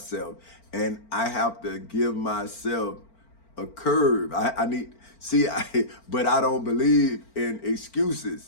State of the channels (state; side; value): late; right; 4.4 ms